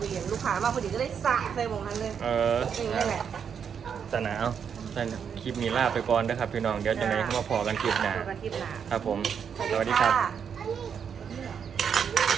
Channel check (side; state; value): left; quieter; 7.3 dB